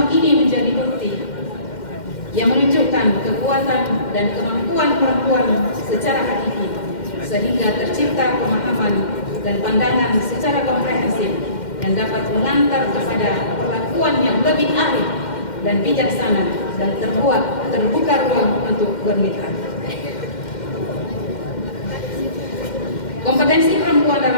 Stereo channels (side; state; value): right; late; 2.1 ms